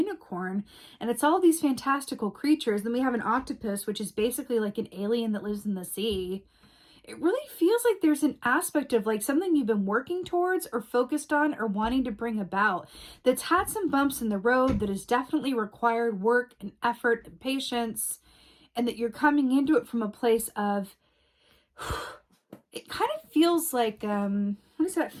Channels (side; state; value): both; identical; correlation 1.00